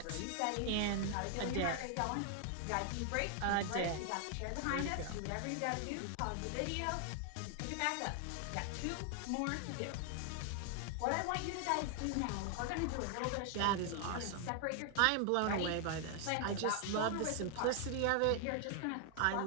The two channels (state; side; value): different; both; correlation 0.00